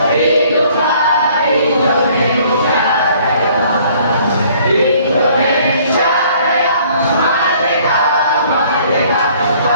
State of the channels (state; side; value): inverted; both; correlation -0.58